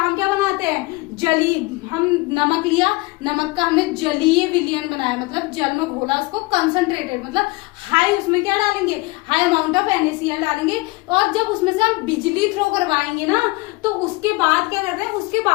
हम क्या बनाते हैं, जली, हम नमक लिया, नमक का हमने जलीय विलयन बनाया, मतलब जल में घोला उसको, कंसंट्रेटेड, मतलब हाई, उसमें क्या डालेंगे, हाई अमाउंट ऑफ NaCl डालेंगे, और जब उसमें से हम बिजली थ्रो करवाएंगे ना, तो उसके बाद क्या करते हैं,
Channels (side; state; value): right; quieter; 23.5 dB